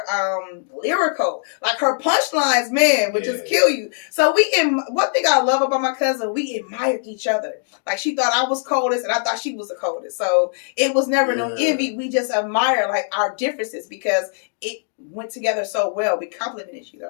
lyrical. Like her punchlines, man, would just kill you. So one thing I love about my cousin, we admired each other. Like she thought I was coldest and I thought she was the coldest. So it was never no envy. We just admire like our differences because it went together so well. We complimented each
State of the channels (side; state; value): right; silent; digital silence